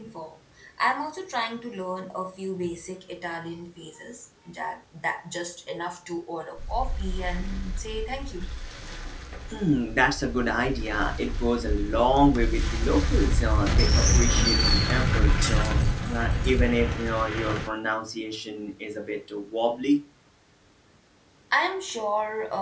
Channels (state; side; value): identical; both; correlation 1.00